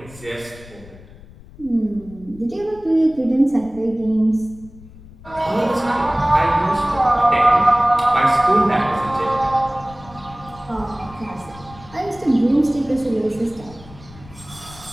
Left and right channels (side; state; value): left; noise; rumble, 20 dB below the sound